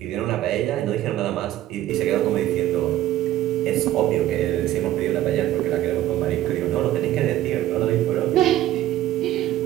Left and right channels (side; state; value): left; quieter; 13.6 dB